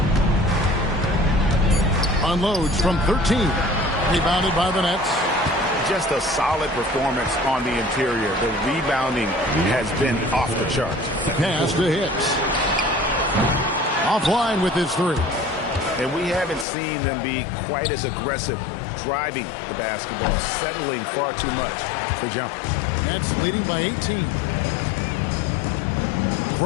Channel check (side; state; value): right; drops out; at 16.7 s